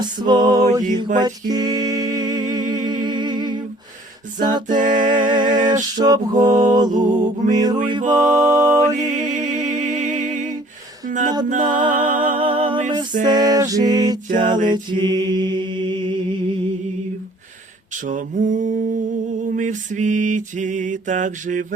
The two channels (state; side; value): normal; both; correlation 0.55